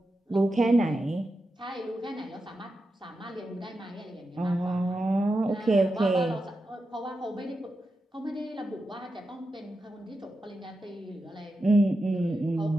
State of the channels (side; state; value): both; normal; correlation 0.89